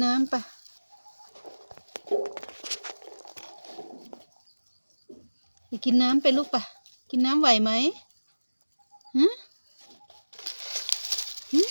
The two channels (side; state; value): both; inverted; correlation -1.00